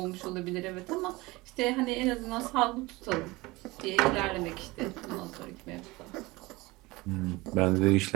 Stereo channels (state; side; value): quieter; left; 21.9 dB